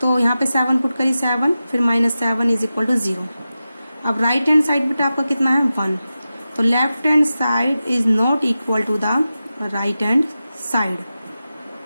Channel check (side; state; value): both; inverted; correlation -0.93